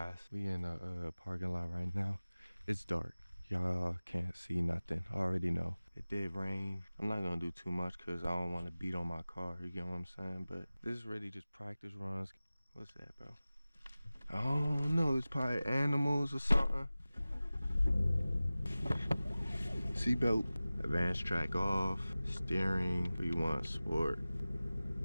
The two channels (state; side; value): inverted; both; correlation -0.97